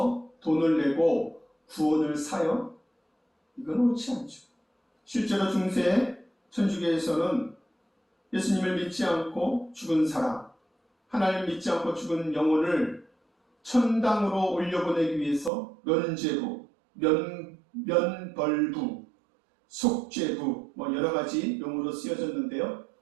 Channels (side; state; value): left; drops out; at 15.5 s